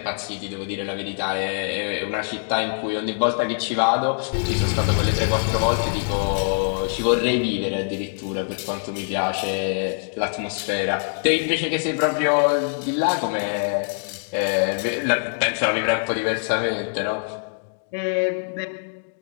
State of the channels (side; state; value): right; silent; digital silence